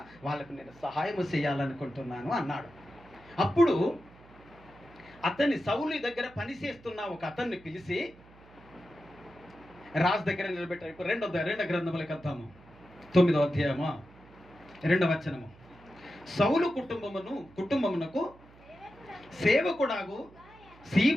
వాళ్ళకు నేను సహాయం చేయాలనుకుంటున్నాను అన్నాడు. అప్పుడు సౌలు దగ్గర పనిచేస్తున్న ఒక అతన్ని పిలిచి రాజు దగ్గర నిలబెట్టారు. ఇప్పుడు రెండో గ్రంథములకు వద్దాము. 9వ అధ్యాయము 2వ వచనము. సౌలు కుటుంబమునకు సేవకుడాగు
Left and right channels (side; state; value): right; noise; hum, 24 dB below the sound